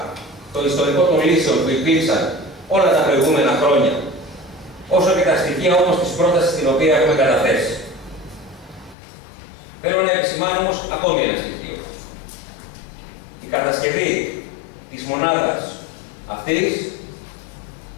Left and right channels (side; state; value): right; drops out; at 9.0 s